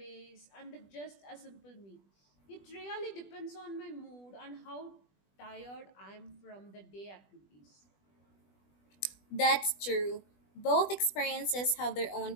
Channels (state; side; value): late; right; 20 ms